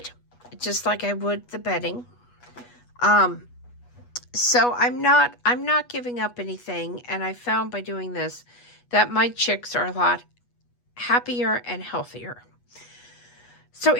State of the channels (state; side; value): late; right; 8.2 ms